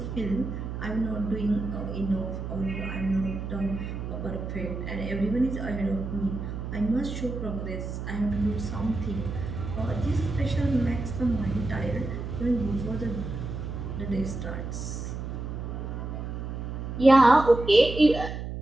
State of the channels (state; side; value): noise; right; hum, 6 dB below the sound